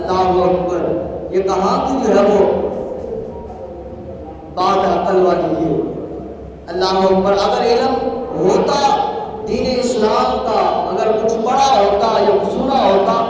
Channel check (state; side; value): identical; both; correlation 1.00